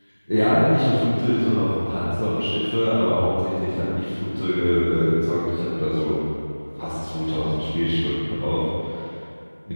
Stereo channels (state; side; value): inverted; both; correlation -1.00